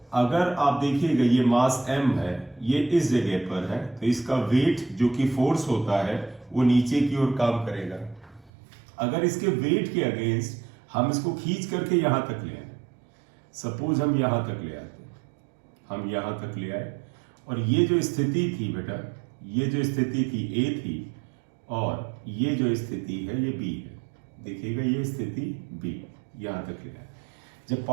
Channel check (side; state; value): left; drops out; at 8.5 s